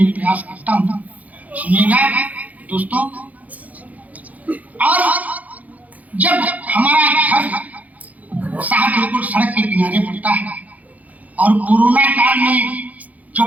प्रयास करता हूँ। सुनिएगा दोस्तों, और जब हमारा घर साहब बिल्कुल सड़क के किनारे पड़ता है और कोरोना काल में जो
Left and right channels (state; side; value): late; left; 0.076 ms